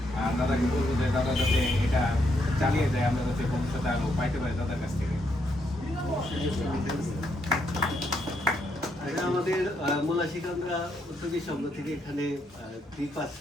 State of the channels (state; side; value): normal; both; correlation 0.76